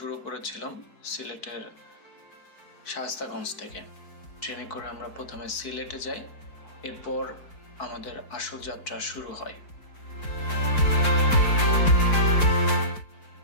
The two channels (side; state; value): right; late; 4.4 ms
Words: করেছিলাম সিলেটের শায়েস্তাগঞ্জ থেকে। ট্রেনে করে আমরা প্রথমে সিলেটে যাই, এরপর আমাদের আসল যাত্রা শুরু হয়।